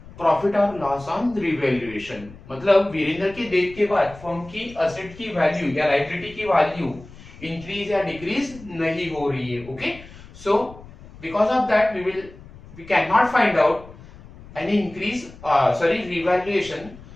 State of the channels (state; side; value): noise; left; rumble, 19 dB below the sound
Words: profit और loss on revaluation, मतलब वीरेंद्र के death के बाद firm की asset की value या liability की value increase या डिक्रीज नहीं हो रही है. Okay, so because of that we can not find out any increase, sorry revaluation,